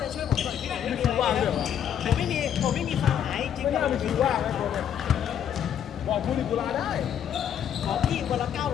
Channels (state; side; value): quieter; right; 9.3 dB